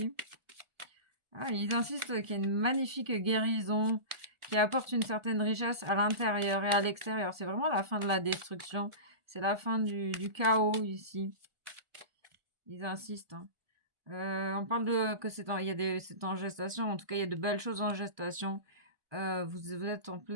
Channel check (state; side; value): late; left; 1.4 ms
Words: Ah, ils insistent qu'il y a une magnifique guérison qui apporte une certaine richesse à l'intérieur et à l'extérieur. C'est vraiment la fin de la destruction, c'est la fin du chaos ici. Ils insistent, hein. On parle de que c'est en gestation. En tout cas, il y a de belles choses en gestation. Vous êtes en